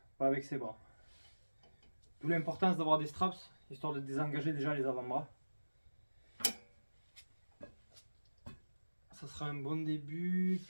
pas avec ses bras. D'où l'importance d'avoir des straps, histoire de désengager déjà les avant-bras. Ça sera un bon début,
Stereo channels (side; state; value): both; inverted; correlation -1.00